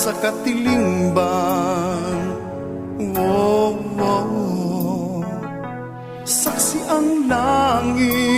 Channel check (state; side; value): identical; both; correlation 1.00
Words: katilingban. Wow, wow. Saksi ang